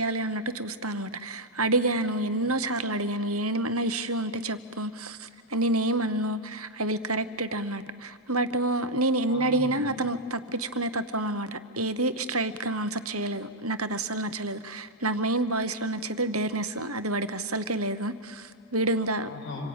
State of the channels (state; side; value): normal; both; correlation -0.03